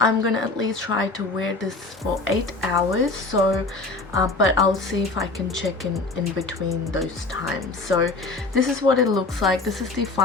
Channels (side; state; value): right; quieter; 3.4 dB